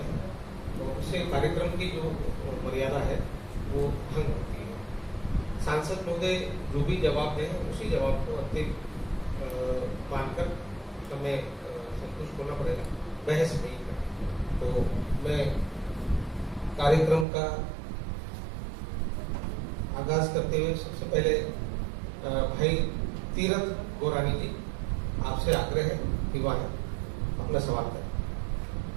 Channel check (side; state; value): left; drops out; at 17.2 s